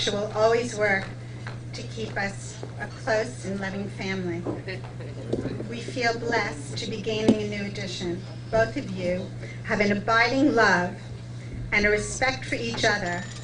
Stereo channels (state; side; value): identical; both; correlation 1.00